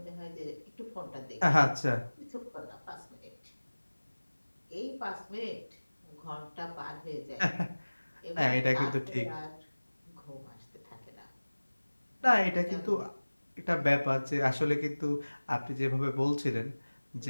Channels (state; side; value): inverted; both; correlation -1.00